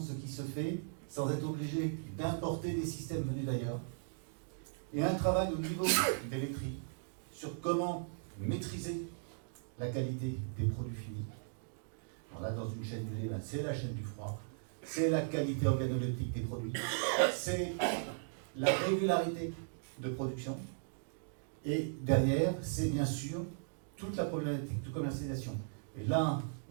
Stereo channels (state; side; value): silent; left; digital silence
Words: qui se fait sans être obligé d'importer des systèmes venus d'ailleurs. Et un travail au niveau des laiteries sur comment maîtriser la qualité des produits finis. Alors là, dans une chaîne du lait, c'est la chaîne du froid, c'est la qualité organoleptique des produits, c'est la régularité de production, et derrière, c'est bien sûr toute la problématique de commercialisation. Et là,